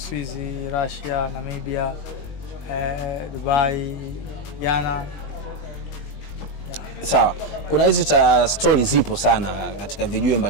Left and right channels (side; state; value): right; late; 20 ms